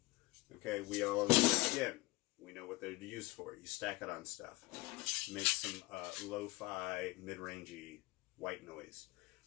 okay, we know what they're used for. You stack it on stuff. Make some lo-fi, mid-rangey white noise.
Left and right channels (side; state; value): right; quieter; 21.3 dB